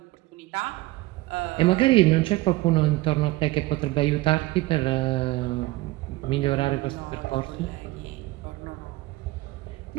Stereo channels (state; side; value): quieter; left; 19.2 dB